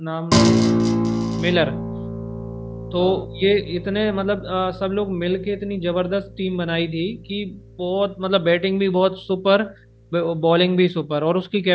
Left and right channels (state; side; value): identical; both; correlation 1.00